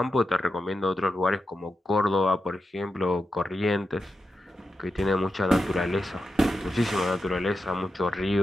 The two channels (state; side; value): normal; both; correlation 0.89